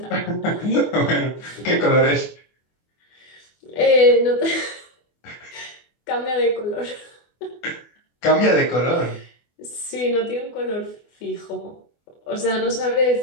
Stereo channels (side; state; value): right; late; 24 ms